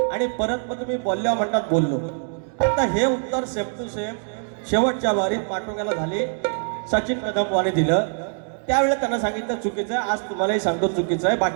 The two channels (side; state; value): left; silent; 63 dB below the other